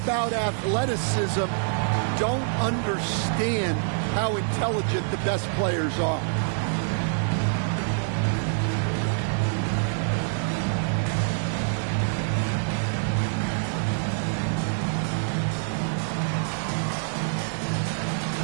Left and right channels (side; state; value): left; silent; 61 dB below the other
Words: athleticism don't understand how intelligent the best players are.